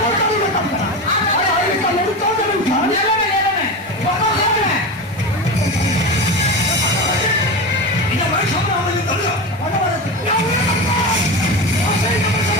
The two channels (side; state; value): both; normal; correlation 0.23